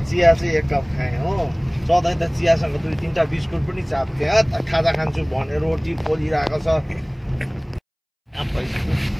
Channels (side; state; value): both; identical; correlation 1.00